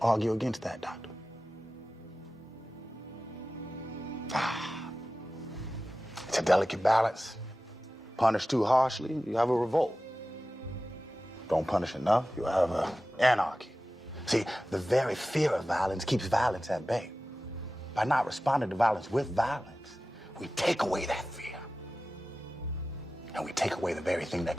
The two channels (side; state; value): both; normal; correlation 0.95